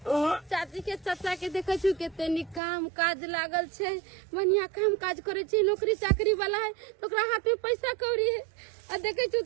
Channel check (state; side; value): drops out; left; at 2.6 s